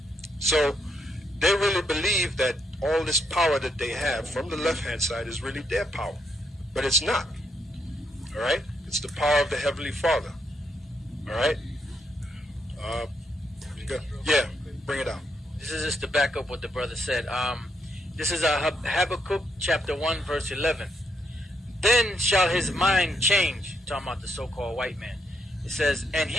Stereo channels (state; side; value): normal; both; correlation 0.77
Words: So they really believe that all this power that they have from the left-hand side is really their power. But it's not. All right? It's the power of the Heavenly Father. All right? Yeah, bring it out. This is just to back up what the brother said. This is Habakkuk chapter 1, verse 11. Then shall his mind change, talking about the so-called white man. It says, and